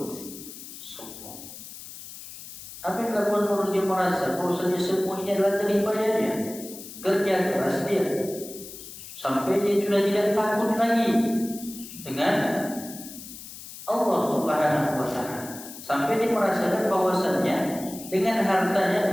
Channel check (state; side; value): noise; left; hiss, 14 dB below the sound